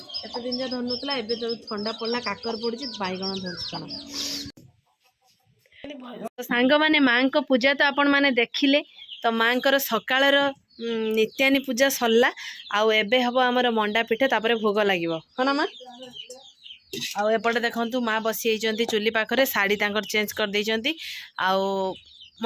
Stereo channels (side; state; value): both; identical; correlation 1.00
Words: दिन जो धरुला एवं जो ठंडा पड़ा काकर पड़ी बैगण धर सांग माने माँ को पूजा तो आपण मैंने देखिले। तो माँ को सकाळ नित्यानी पूजा सरला आबे हम आमर मंडा पिठा तापर भोग लगे हाँ ना माँ। आउपटे देखु माँ बसी चुली पाखे शाढ़ी चेंज कर देती